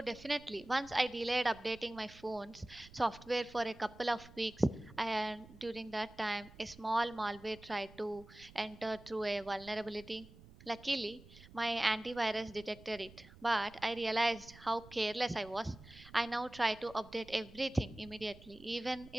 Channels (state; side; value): noise; right; rumble, 20 dB below the sound